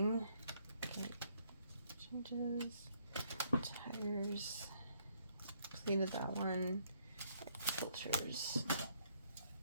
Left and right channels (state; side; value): inverted; both; correlation -0.69